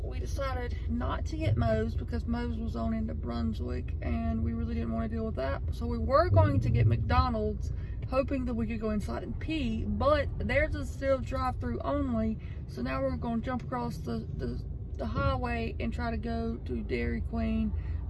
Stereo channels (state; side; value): identical; both; correlation 1.00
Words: We decided not to get Moe's because Moe's was on into Brunswick, and we really didn't want to deal with that. So we were going to get McDonald's, hoping that we could go inside and pee, but theirs is still drive-through only. So now we're going to jump across the highway and try to go to Dairy Queen.